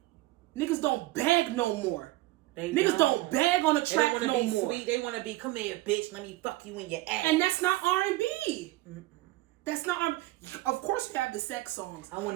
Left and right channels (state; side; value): quieter; left; 18.7 dB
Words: niggas don't beg no more. Niggas don't beg on the track no more. They don't want to be sweet. They want to be, come here, bitch, let me fuck you in your ass. And that's not R&B. That's not R&B. Of course you have the sex songs. I